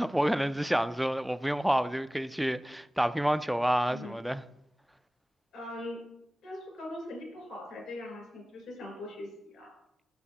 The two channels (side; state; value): both; normal; correlation 0.98